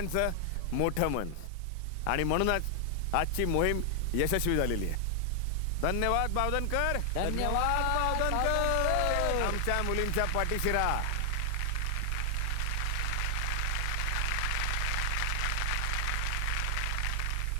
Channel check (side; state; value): both; different; correlation 0.00